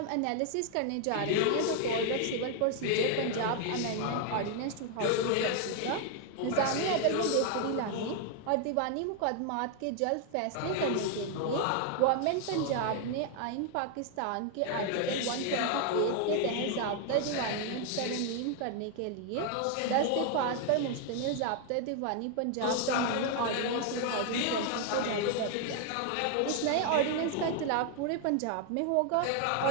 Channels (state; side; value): different; both; correlation 0.00